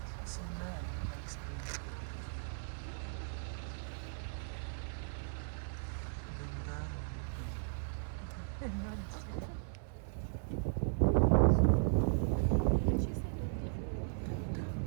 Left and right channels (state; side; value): silent; left; digital silence